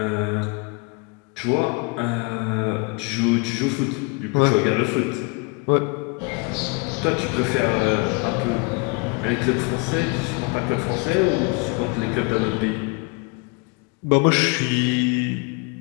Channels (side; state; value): right; quieter; 29.9 dB